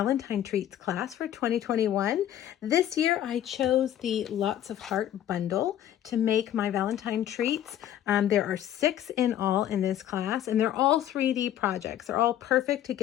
Treats class for 2021. This year I chose the Lots of Heart bundle to make my Valentine Treats. There are 6 in all in this class, and they're all 3D projects. They're all perfect to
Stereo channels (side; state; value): right; quieter; 11.5 dB